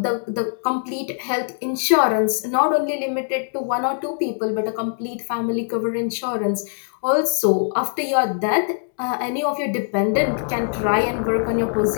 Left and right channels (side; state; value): right; silent; digital silence